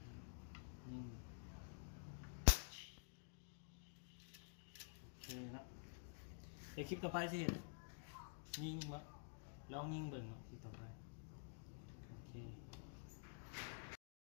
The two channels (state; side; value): silent; right; digital silence